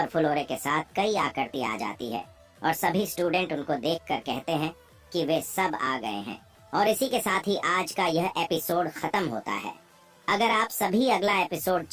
ओरे के साथ कई आकृति आ जाती है और सभी स्टूडेंट उनको देखकर कहते हैं कि वे सब आ गए हैं। और इसी के साथ ही आज का यह एपिसोड खत्म होता है। अगर आप सभी अगला एपिसोड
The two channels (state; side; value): identical; both; correlation 1.00